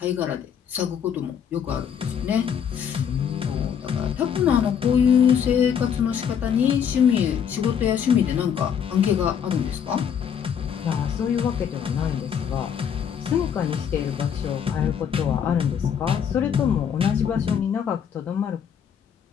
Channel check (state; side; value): quieter; right; 8.0 dB